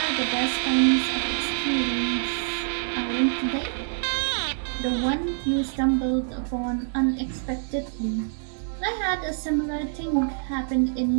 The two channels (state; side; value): silent; left; 61 dB below the other